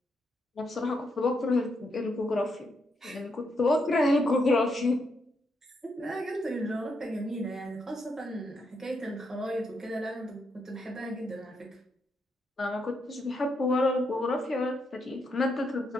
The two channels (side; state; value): both; normal; correlation 0.79